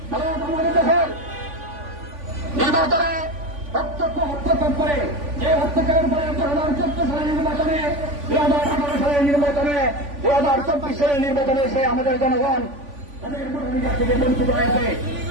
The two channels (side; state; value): left; late; 3.5 ms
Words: ভারত আমাদের দেশের নির্বাচনে হস্তক্ষেপ করে, যে হস্তক্ষেপের পরে 2014 সালের নির্বাচনে, 2018 সালের নির্বাচনে, 2024 সালের নির্বাচনে সে আমাদের জনগণ তাদের ভোটাধিকার থেকে বঞ্চিত হয়েছে।